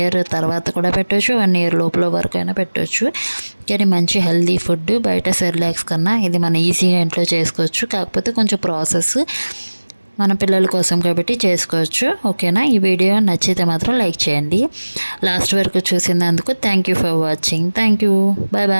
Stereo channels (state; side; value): inverted; both; correlation -1.00